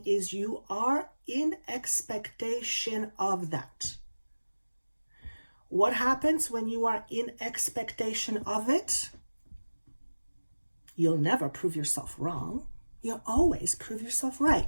is you are in expectation of that. What happens when you are in expectation of it? You'll never prove yourself wrong. You'll always prove yourself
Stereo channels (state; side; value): inverted; both; correlation -1.00